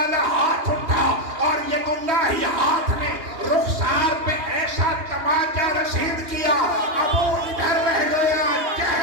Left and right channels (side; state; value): left; late; 2.9 ms